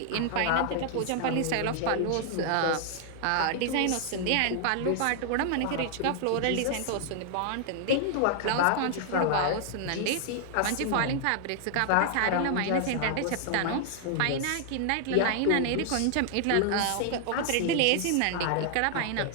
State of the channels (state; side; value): different; both; correlation 0.00